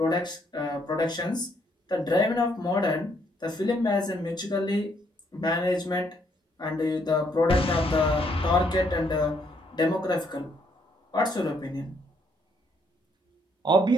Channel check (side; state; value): both; normal; correlation 0.71